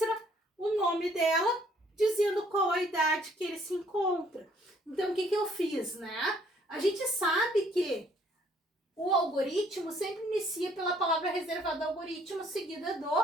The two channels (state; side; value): normal; both; correlation 0.63